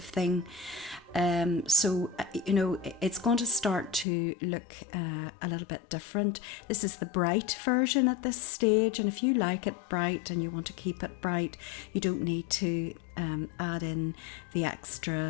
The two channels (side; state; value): right; drops out; at 4.0 s